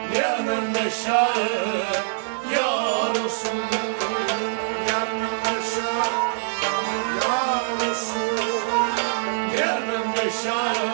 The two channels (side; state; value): left; silent; 63 dB below the other